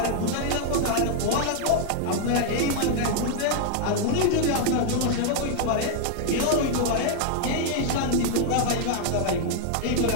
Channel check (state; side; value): different; both; correlation 0.00